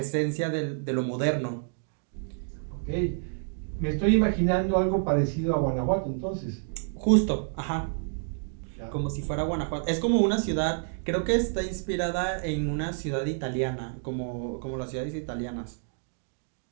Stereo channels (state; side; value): silent; left; digital silence